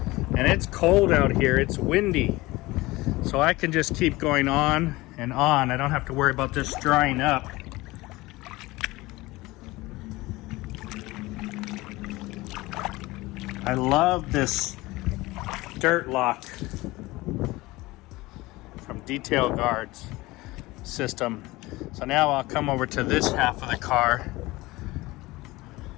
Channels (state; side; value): quieter; right; 20.4 dB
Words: And it's cold out here, it's windy. So I can just keep going on and on. I don't have to worry about this drying up. I love this dirt lock from Detail Guard's system. So now I'll come over to this half of the car